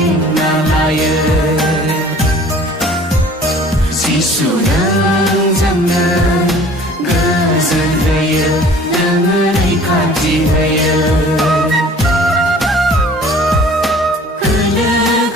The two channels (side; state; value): both; normal; correlation 0.49